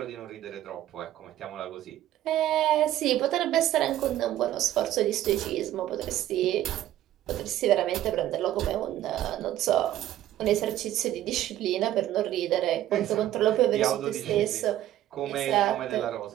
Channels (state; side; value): quieter; left; 13.1 dB